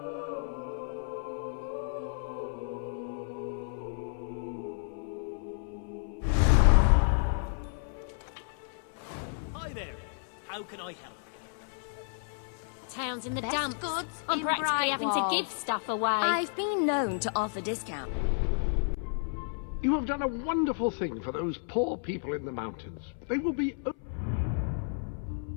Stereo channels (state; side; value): silent; right; 57 dB below the other